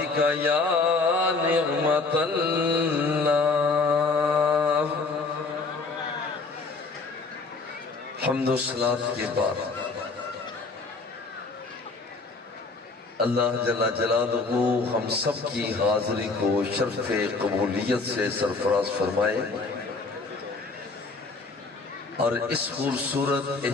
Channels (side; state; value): right; quieter; 3.9 dB